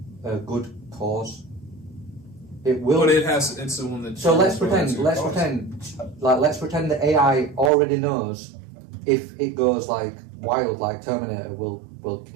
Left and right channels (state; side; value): drops out; left; at 7.7 s